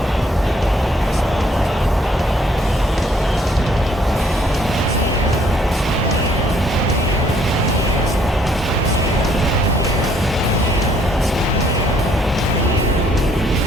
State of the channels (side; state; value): both; normal; correlation 0.65